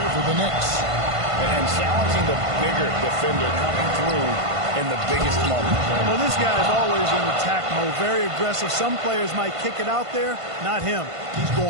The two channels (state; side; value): late; left; 1.5 ms